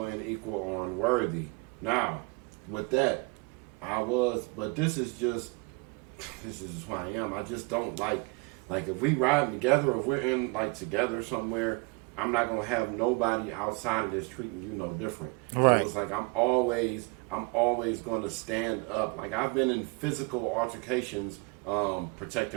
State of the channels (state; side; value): quieter; left; 29.6 dB